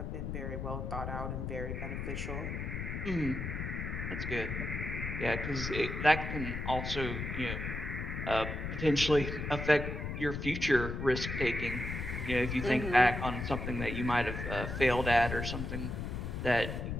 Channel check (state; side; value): noise; left; rumble, 4 dB below the sound